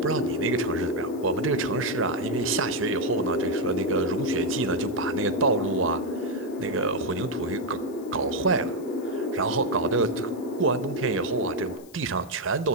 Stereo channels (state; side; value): noise; left; hiss, 25 dB below the sound